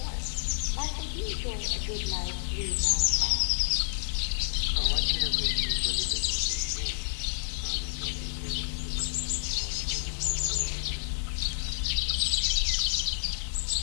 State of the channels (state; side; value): silent; right; 58 dB below the other